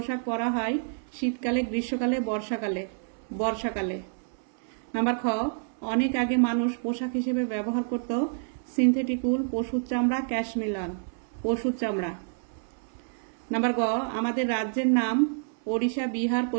परा हय शीतकाले, ग्रीष्मकाले, बर्षाकाले। बर्षाकाले। नम्बर ख अनेक आगे मानुष पोशाक हिसेबे व्यवहार करत सिंथेटिक उल, पशुर चामड़ा, कैशमिलान, पशुर चामड़ा। नम्बर ग आमादेर राज्येर नाम ओडिशा, बिहार,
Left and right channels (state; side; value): silent; left; 59 dB below the other